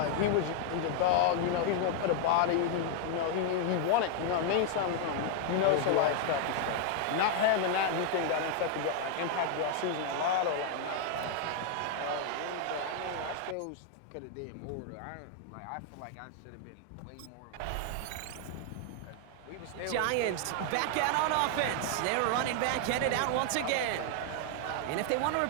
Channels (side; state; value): both; different; correlation 0.00